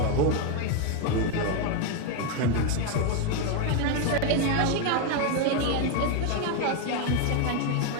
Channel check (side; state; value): both; different; correlation 0.01